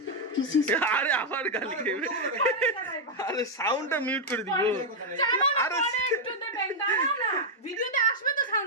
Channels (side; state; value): both; normal; correlation -0.01